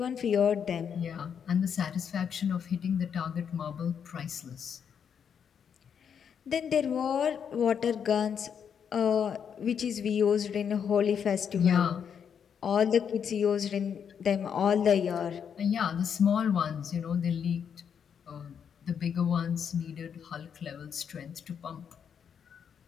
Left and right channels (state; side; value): quieter; right; 7.6 dB